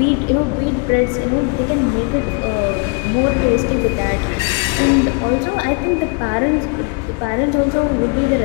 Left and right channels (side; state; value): right; quieter; 33.2 dB